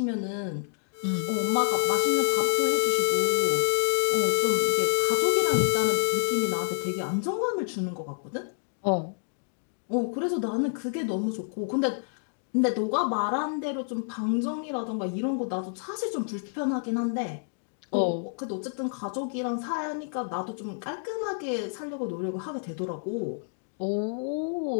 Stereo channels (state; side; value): silent; right; digital silence